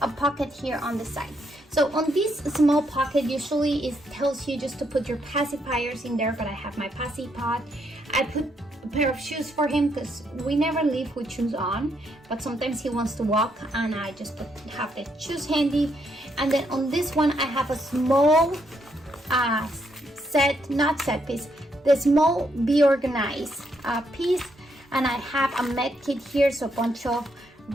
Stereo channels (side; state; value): both; normal; correlation 0.76